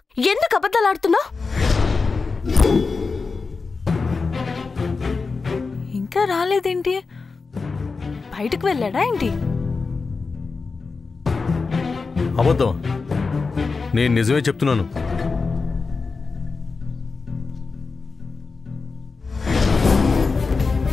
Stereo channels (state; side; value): quieter; right; 4.4 dB